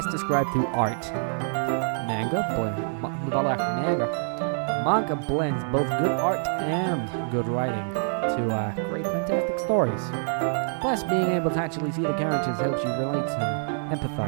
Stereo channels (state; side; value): silent; left; 61 dB below the other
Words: described through art. Manga blends both good art and good writing to create fantastic stories. Plus, being able to actually see the characters helps you relate and